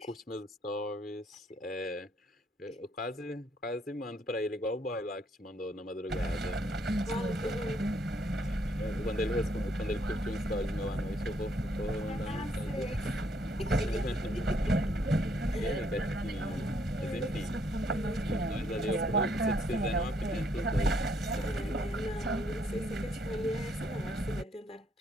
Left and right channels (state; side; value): normal; both; correlation 0.70